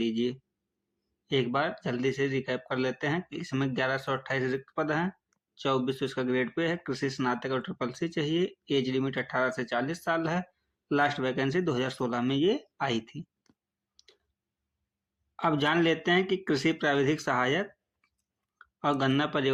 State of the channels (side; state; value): both; identical; correlation 1.00